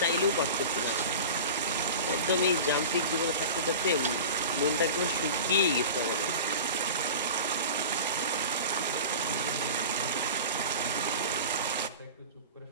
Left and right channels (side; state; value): both; inverted; correlation -0.34